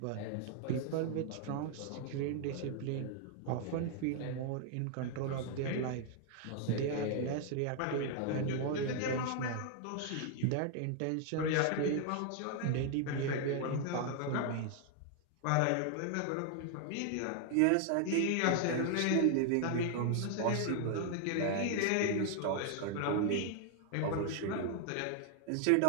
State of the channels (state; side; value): different; both; correlation 0.00